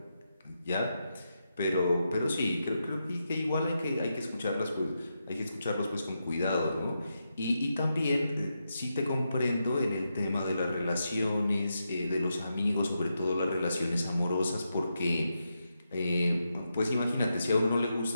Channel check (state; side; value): inverted; both; correlation -0.86